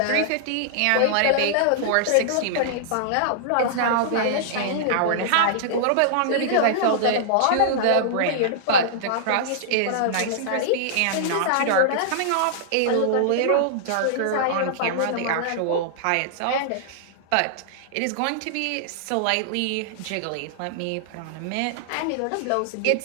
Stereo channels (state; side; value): different; both; correlation -0.01